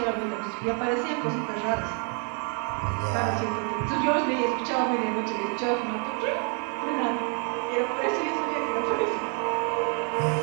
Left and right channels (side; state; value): left; quieter; 39.3 dB